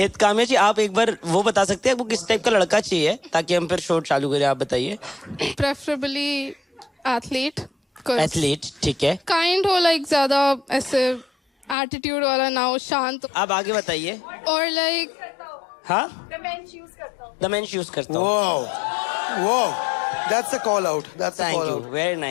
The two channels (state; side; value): drops out; right; at 11.8 s